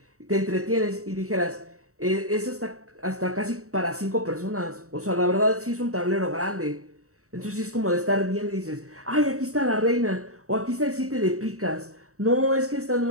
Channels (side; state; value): left; late; 0.64 ms